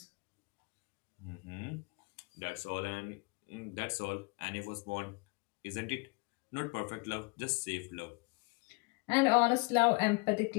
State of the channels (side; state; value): right; quieter; 29.1 dB